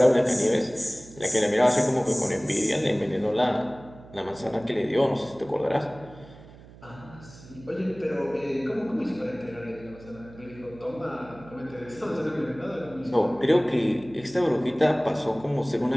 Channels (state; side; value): noise; right; hum, 20 dB below the sound